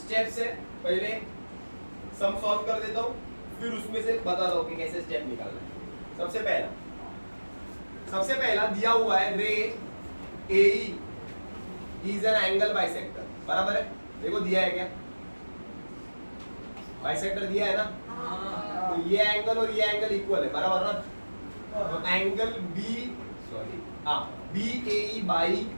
से पहले सम सॉल्व कर देता हूँ, फिर उसमें से बताता हूँ कि कैसे स्टेप निकालना है। सबसे पहला दिया हुआ है रे AE is an angle bisector, बराबर है। देखो दिया है क्या, बाइसेक्टर दिया है ना, तो ये एंगल और ये एंगल इक्वल है, बराबर ना। तो एंगल BAE बाई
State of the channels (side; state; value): both; inverted; correlation -1.00